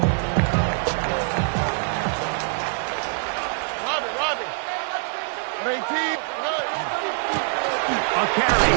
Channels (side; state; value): left; silent; 56 dB below the other